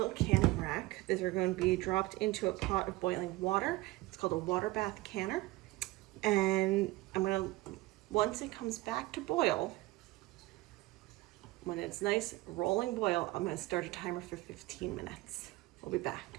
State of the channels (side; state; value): left; quieter; 19.5 dB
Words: canning rack, these are going to be dropped into a pot of boiling water. It's called a water bath canner. And I'm going to, once it comes back to boil, when it's nice rolling boil, I'm going to start a timer for 15 minutes. We'll be back.